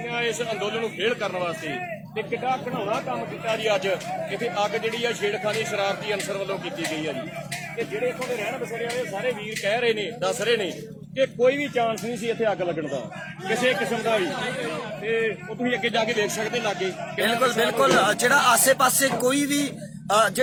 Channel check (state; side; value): identical; both; correlation 1.00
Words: ਇਸ ਅੰਦੋਲਨ ਨੂੰ ਫੇਲ ਕਰਨ ਵਾਸਤੇ। ਤੇ ਕਿੱਡਾ ਘਣਾਉਣਾ ਕੰਮ ਕੀਤਾ ਜੀ ਅੱਜ। ਇੱਥੇ ਅੱਗ ਜਿਹੜੀ ਆ ਛੇੜਖਾਨੀ ਸ਼ਰਾਰਤੀ ਅਨਸਰ ਵੱਲੋਂ ਕੀਤੀ ਗਈ ਹੈ ਜੀ। ਤੇ ਜਿਹੜੇ ਇੱਥੋਂ ਦੇ ਰਹਿਣ ਬਸੇਰੇ ਵਾਲੇ ਸਾਰੇ ਵੀਰ ਕਹਿ ਰਹੇ ਨੇ, ਦੱਸ ਰਹੇ ਨੇ ਕਿ ਕੋਈ ਵੀ ਚਾਂਸ ਨਹੀਂ ਸੀ ਇੱਥੇ ਅੱਗ ਲੱਗਣ ਦਾ ਕਿਸੇ ਕਿਸਮ ਦਾ ਵੀ। ਤੇ ਉਹ ਤੁਸੀਂ ਅੱਗੇ ਜਾ ਕੇ ਦੇਖ ਸਕਦੇ ਲਾਗੇ। ਬਿਲਕੁਲ ਜਿਹੜਾ ਆਸੇ-ਪਾਸੇ ਕੋਈ ਵੀ